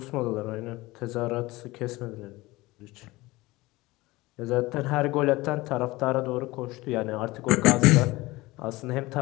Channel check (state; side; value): quieter; right; 20.3 dB